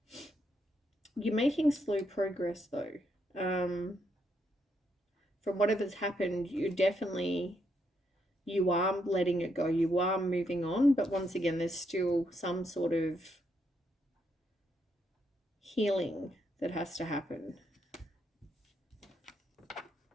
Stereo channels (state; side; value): normal; both; correlation 0.77